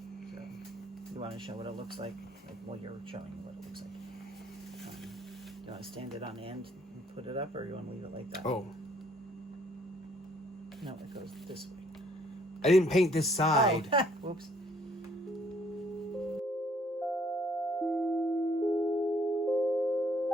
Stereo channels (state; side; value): normal; both; correlation 0.63